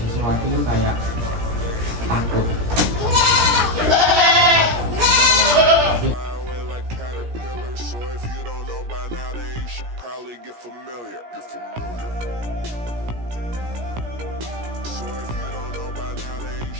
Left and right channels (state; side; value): late; left; 17 ms